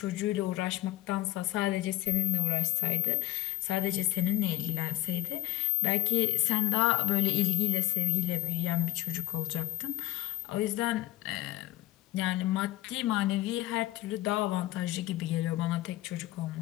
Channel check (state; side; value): quieter; right; 15.8 dB